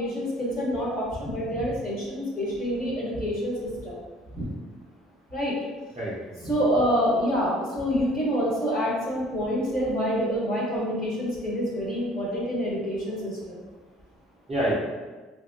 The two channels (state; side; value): normal; both; correlation 0.52